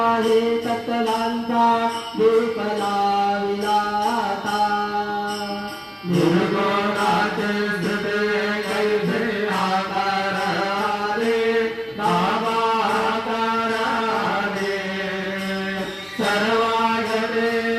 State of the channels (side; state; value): both; identical; correlation 1.00